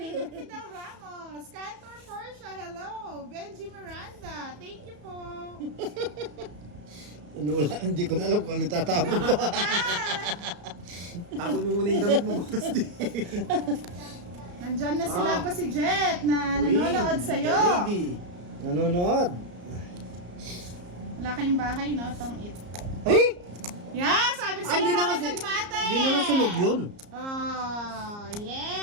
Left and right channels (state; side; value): late; left; 34 ms